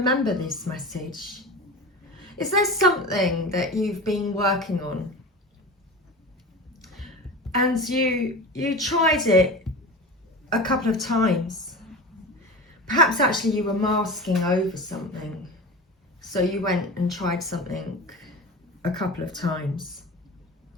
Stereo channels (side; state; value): both; normal; correlation 0.30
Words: this message. Is there something that you've been working on? And you tried it a couple of times. Perhaps actually you were masking over something. So you went and tried something a couple of times.